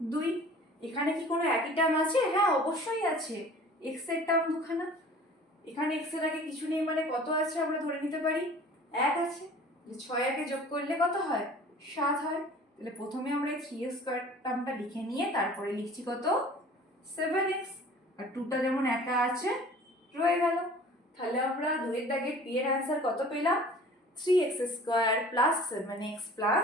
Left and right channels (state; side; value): normal; both; correlation 0.46